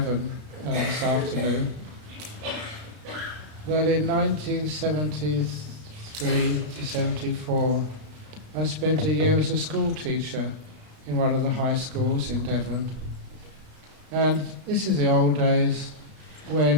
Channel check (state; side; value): late; left; 33 ms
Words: this afternoon, that in 1973 to 74, I spent a year as a school teacher in one of the high schools in Devon. And this is the old days